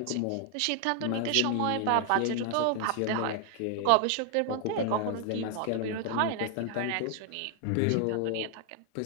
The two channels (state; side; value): different; both; correlation 0.00